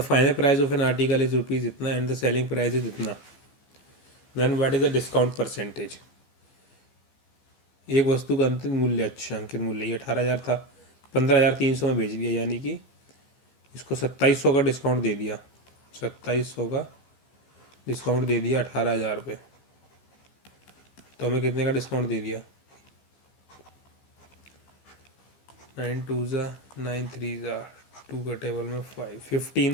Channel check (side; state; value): right; late; 14 ms